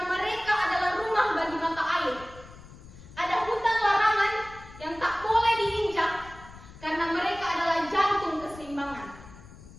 mereka adalah rumah bagi mata air. Ada hutan larangan yang tak boleh diinjak karena mereka adalah jantung keseimbangan.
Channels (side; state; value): left; noise; rumble, 18 dB below the sound